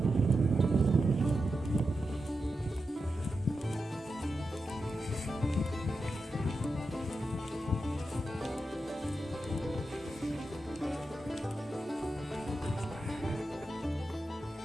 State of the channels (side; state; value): both; normal; correlation 0.89